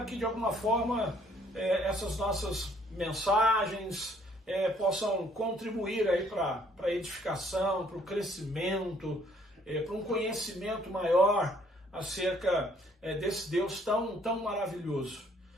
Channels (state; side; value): normal; both; correlation 0.63